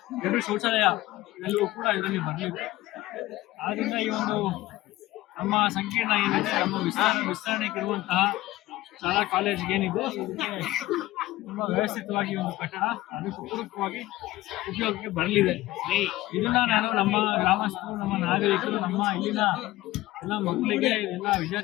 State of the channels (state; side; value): quieter; right; 17.1 dB